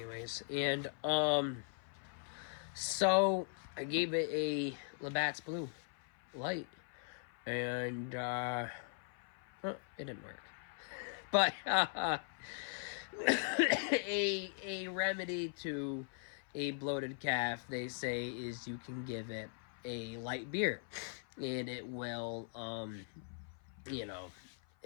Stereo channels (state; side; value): silent; right; 51 dB below the other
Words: and so I gave it a Labatt's Blue Light, and it didn't work. But a remedy to a bloated calf, they say, is you can give it a light beer, and it will,